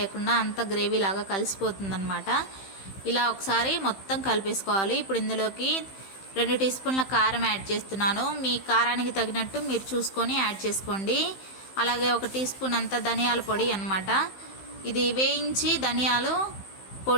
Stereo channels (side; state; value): right; late; 15 ms